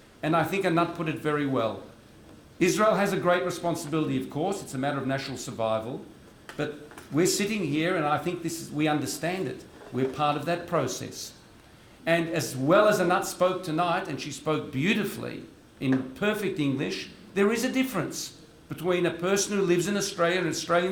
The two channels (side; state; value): both; identical; correlation 1.00